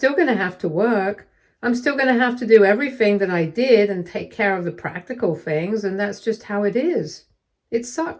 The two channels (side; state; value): both; identical; correlation 1.00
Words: going to have to work. I'm still going to have to do everything that I did and take care of the practical things, and that's just how it is. It